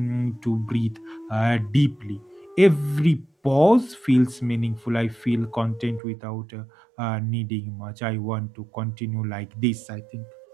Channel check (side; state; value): left; drops out; at 6.0 s